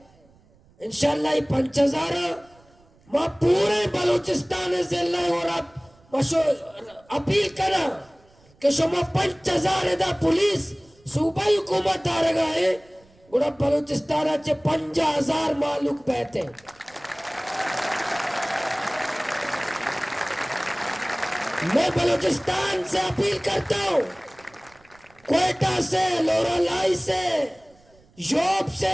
इंशाल्लाह 5,000 माँ पूरे बलूचिस्तान जिले और आप अपील करा कि शुमा 5,000 दा पुलिस सूबाई हुकूमत आ रहा है गुड़ा बलूचिस्तान चे 50,000 मालूक बैठे मैं बलूचिस्तान से अपील करता हूँ क्वेटा से लोरालाई से योब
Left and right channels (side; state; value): right; noise; rumble, 30 dB below the sound